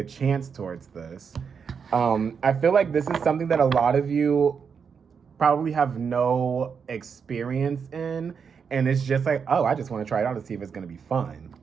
chance towards this. I feel like this is something that a lot of you probably have no experience in. And it's just like, oh, I just want to try it out to see if it's going to be fun.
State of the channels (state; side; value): quieter; left; 6.3 dB